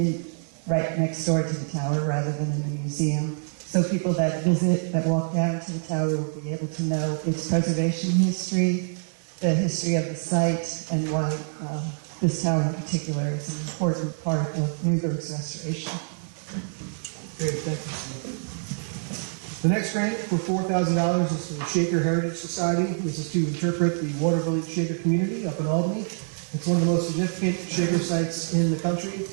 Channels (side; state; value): left; silent; digital silence